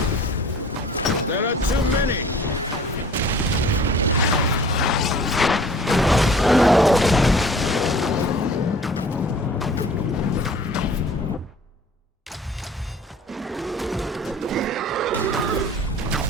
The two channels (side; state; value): both; normal; correlation 0.48